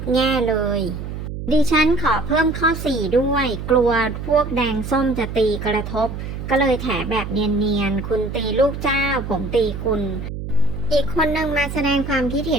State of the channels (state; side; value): noise; right; hum, 7 dB below the sound